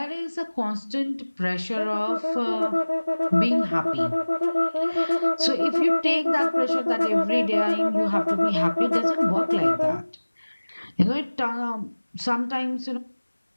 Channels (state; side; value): inverted; both; correlation -1.00